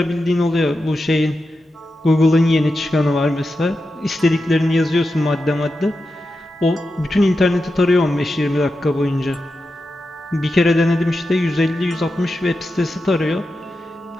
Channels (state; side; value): normal; both; correlation 0.90